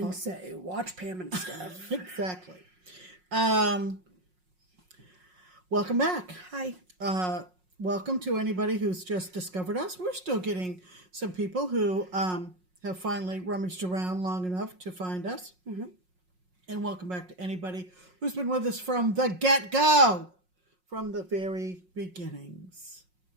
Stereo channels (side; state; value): left; late; 5.5 ms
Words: say, watch Pam and Steph. Exactly. Welcome back. Hi. Welcome to anybody who's just discovered us. We're still getting some people who have finally rummaged around long enough to find us. Mm-hmm. And welcome back to anybody who's been with us from the get-go, from the very beginnings